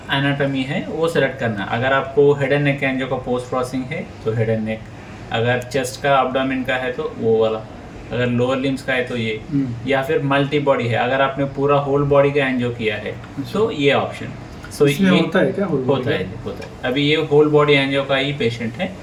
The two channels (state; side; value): identical; both; correlation 1.00